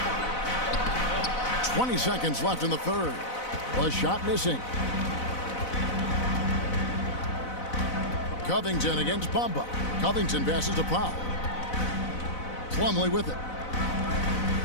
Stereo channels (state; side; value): late; right; 4.0 ms